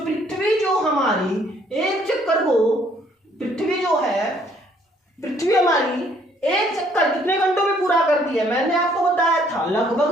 जो हमारी एक चक्कर को, पृथ्वी जो है, पृथ्वी हमारी एक चक्कर कितने घंटों में पूरा करती है? मैंने आपको बताया था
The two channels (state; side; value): normal; both; correlation 0.64